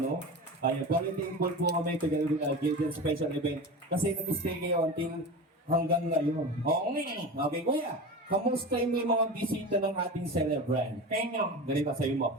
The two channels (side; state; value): both; normal; correlation 0.29